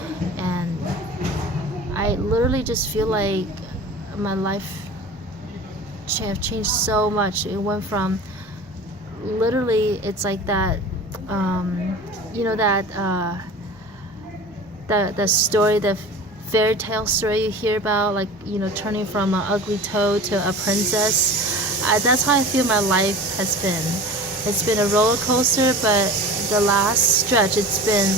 And I literally just feel like my life have changed so much. It went from literally, it's like that, the story, the fairy tale story you hear about, like, turning from an ugly toad to a princess. That's how I feel my life has been. It's been a roller coaster, but the last stretch, it's been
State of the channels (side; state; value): both; normal; correlation 0.37